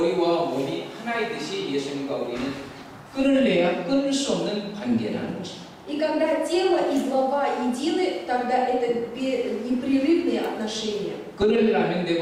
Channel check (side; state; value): both; identical; correlation 1.00